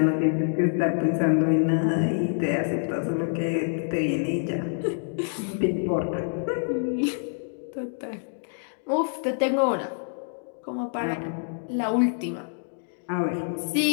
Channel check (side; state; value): right; silent; digital silence